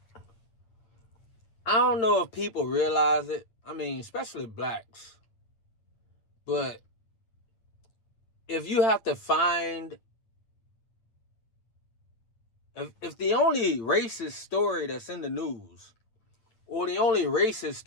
I don't know if people realize it. I mean, especially blacks. But if you have to find, if the only racist story that's in the news, or the only racist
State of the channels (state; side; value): late; right; 9.1 ms